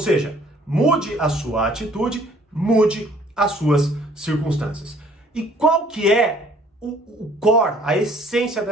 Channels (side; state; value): both; normal; correlation 0.58